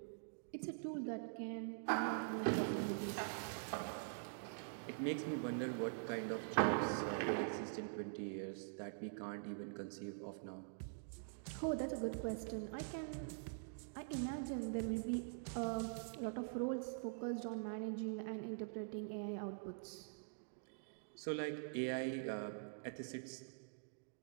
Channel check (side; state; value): left; silent; digital silence